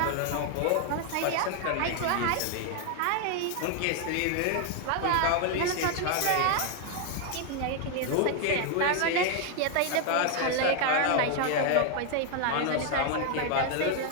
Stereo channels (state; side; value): different; both; correlation 0.00